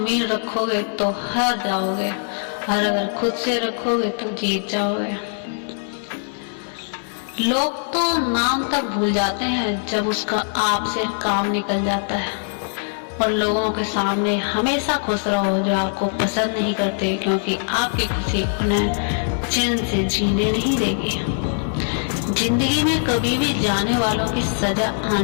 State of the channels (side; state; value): right; silent; 60 dB below the other